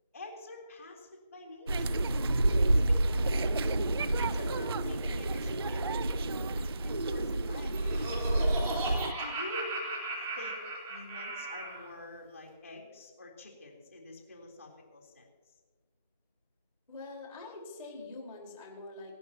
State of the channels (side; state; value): both; inverted; correlation -0.83